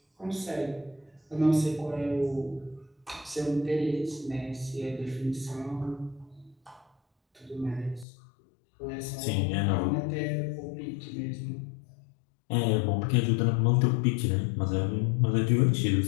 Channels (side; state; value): right; drops out; at 8.1 s